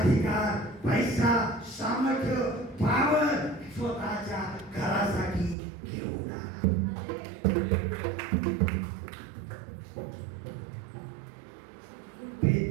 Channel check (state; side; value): drops out; left; at 5.6 s